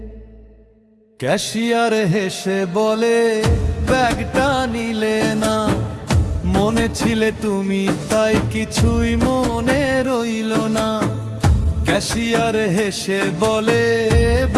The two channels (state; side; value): identical; both; correlation 1.00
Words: ক্যাশিয়ার হেসে বলে, ব্যাগটা নিলে না, মনে ছিলে তুমি তাই কিছুই মনে রইল না। ক্যাশিয়ার হেসে বলে,